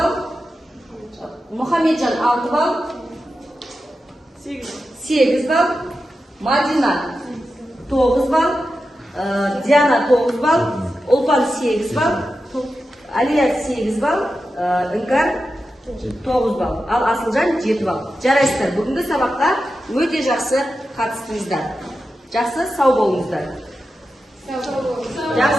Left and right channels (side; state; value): both; normal; correlation 0.91